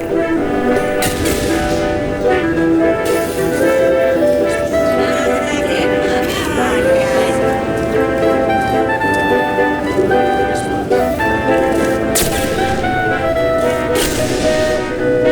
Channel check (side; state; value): both; identical; correlation 1.00